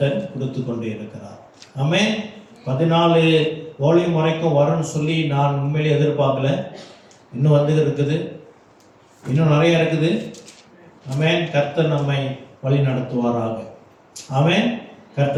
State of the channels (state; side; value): identical; both; correlation 1.00